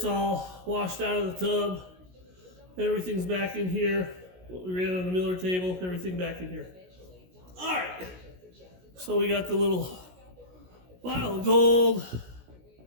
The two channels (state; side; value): late; left; 16 ms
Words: all washed out of the tub. Everything's back in here. What we ran on the Miller table, everything back in here. All right. So we got the little vial of gold